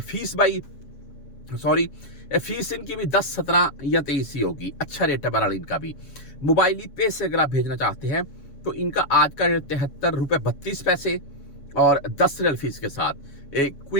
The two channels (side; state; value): right; late; 7.2 ms